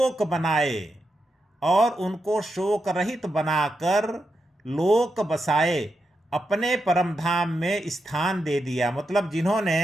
बनाए, और उनको शोक रहित बनाकर लोक बसाए, अपने परम धाम में स्थान दे दिया। मतलब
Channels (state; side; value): normal; both; correlation 0.86